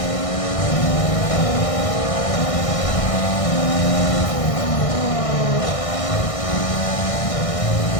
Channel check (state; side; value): late; right; 1.6 ms